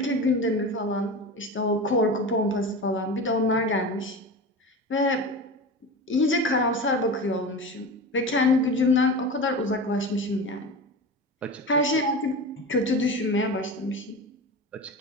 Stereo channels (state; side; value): normal; both; correlation 0.28